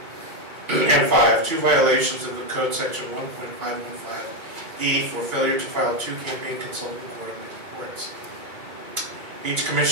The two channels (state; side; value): late; left; 2.2 ms